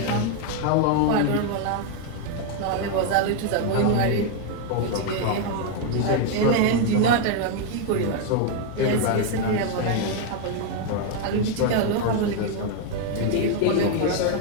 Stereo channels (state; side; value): different; both; correlation 0.01